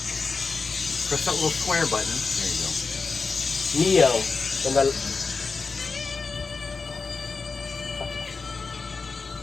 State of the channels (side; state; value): right; quieter; 4.5 dB